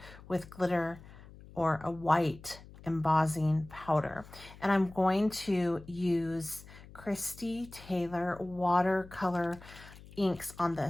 with glitter or a white embossing powder. And I'm going to use Christy Taylor watercolor inks on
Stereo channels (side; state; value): left; noise; hum, 19 dB below the sound